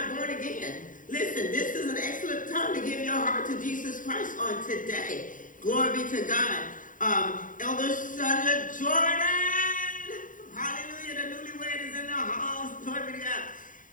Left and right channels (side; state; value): right; late; 0.39 ms